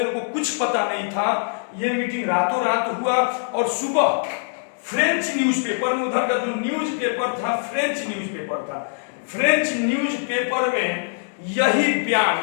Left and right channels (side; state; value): right; silent; digital silence